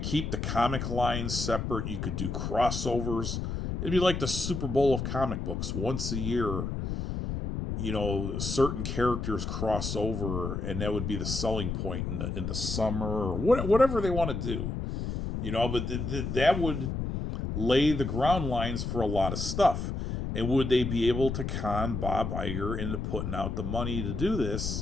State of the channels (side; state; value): left; noise; rumble, 3 dB below the sound